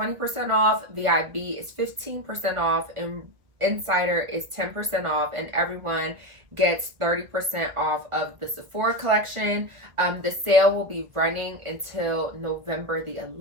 off. VIB is 15% off. And Insider is 10% off. And everyone gets 30% off of the Sephora collection. The sale will be running until November the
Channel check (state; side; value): late; left; 1.5 ms